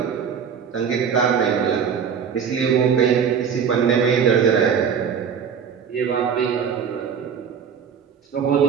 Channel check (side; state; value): left; quieter; 7.2 dB